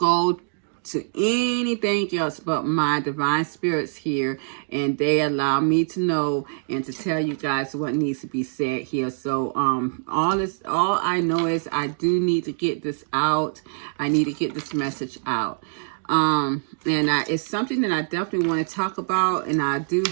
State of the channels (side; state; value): left; silent; digital silence